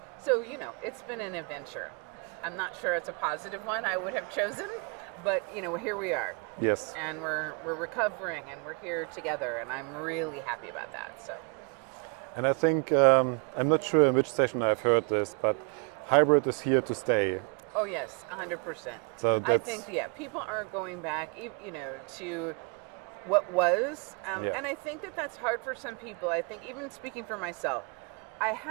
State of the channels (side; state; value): left; quieter; 35.5 dB